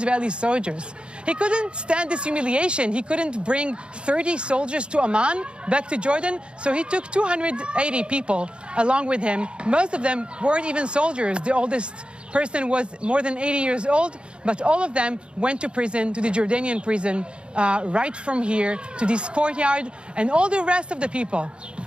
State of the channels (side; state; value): left; late; 0.055 ms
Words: soldiers. He couldn't stand this humiliation. He couldn't bring 30 soldiers to Amman, back to Jordan, so he took 280 people along with him. Most of them weren't even soldiers. The oldest person was more than 80 years old, but all of them went to prison, to the Jordanian prison, right from here to this courtyard, and all the rest of the people,